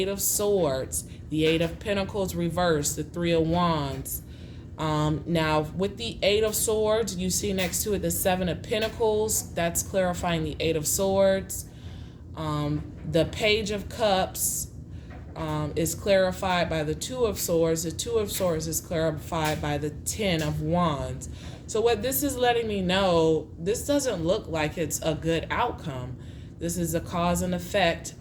of Swords, the Eight of Pentacles reversed, the Three of Wands. Now with the Eight of Swords, you see next to it the Seven of Pentacles. That's clarifying the Eight of Swords. The Page of Cups is clarified by the Two of Swords. The Two of Swords is clarified by the Ten of Wands. So what this is letting me know, this doesn't look like it's a good outcome. This is a cause and effect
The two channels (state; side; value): identical; both; correlation 1.00